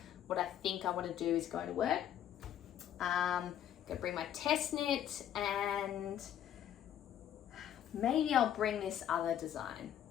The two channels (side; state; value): right; quieter; 10.5 dB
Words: what I think I want to do is going to work. Gonna bring my test knit, and maybe I'll bring this other design.